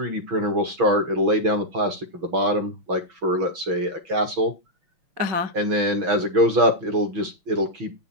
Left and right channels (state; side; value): late; left; 6.1 ms